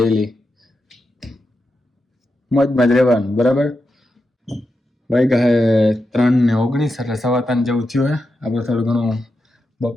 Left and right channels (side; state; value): both; normal; correlation 0.88